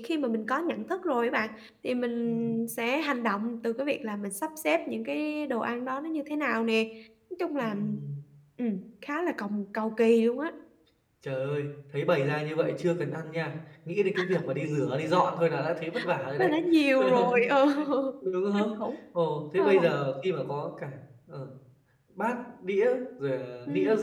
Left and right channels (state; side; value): identical; both; correlation 1.00